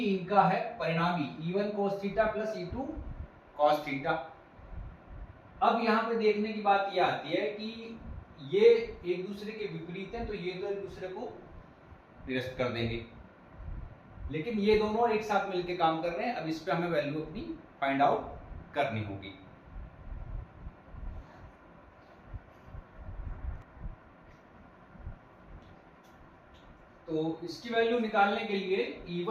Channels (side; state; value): both; identical; correlation 1.00